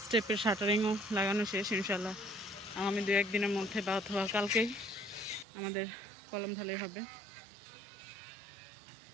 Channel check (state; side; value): drops out; left; at 5.5 s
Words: স্টেপের শাটারিংও লাগানো শেষ। ইনশাল্লাহ আগামী 2-1 দিনের মধ্যে বা অথবা কালকেই আমাদের কলম ঢালাই হবে।